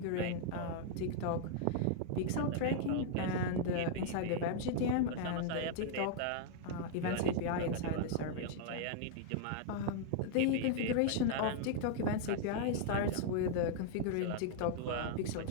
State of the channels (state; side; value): different; both; correlation -0.01